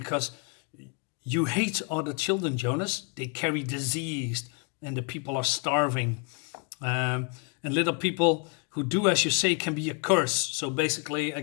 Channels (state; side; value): quieter; right; 36.0 dB